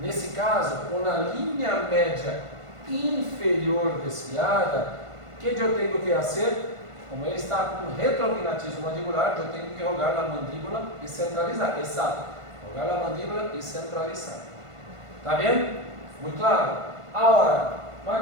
caso, com a linha média inferior desviada, o que eu tenho que fazer? Como ele está com retrognatismo mandibular, eu tenho que jogar a mandíbula e centralizar. Exato. Jogar a mandíbula e centralizar. Tá vendo? Muito claro? Agora, mas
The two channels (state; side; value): late; left; 1.5 ms